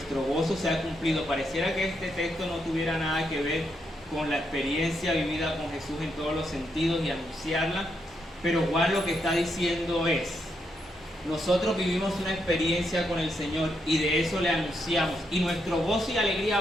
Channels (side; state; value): both; normal; correlation 0.80